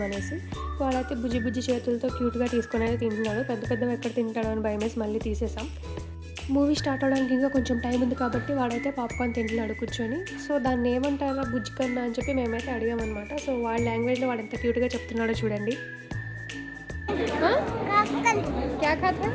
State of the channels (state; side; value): identical; both; correlation 1.00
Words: వాడైతే బుజ్జి బుజ్జి చేతులతో క్యూట్గా తీసుకొని అయితే తింటున్నాడు. పెద్ద పెద్దవి ఎక్కడ తింటాడో అని భయమేసి మళ్ళీ తీసేసాం. మూవీ స్టార్ట్ అవడానికి ఇంకా కొంచెం టైం ఉంది కాబట్టి వాడైతే పాప్కార్న్ తింటున్నాడు కూర్చొని. సో దాన్ని ఏమంటారా బుజ్జి కన్నా అని చెప్పి మేమైతే అడిగామన్నమాట. సో వాళ్ళ లాంగ్వేజ్లో వాడు ఎంత క్యూట్గా చెప్తున్నాడో చూడండి.